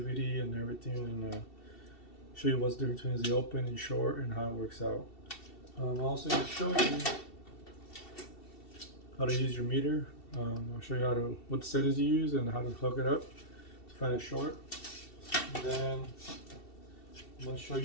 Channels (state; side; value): late; right; 2.7 ms